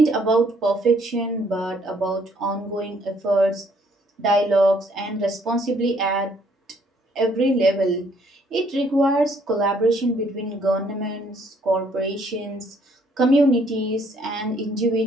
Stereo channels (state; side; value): normal; both; correlation 0.65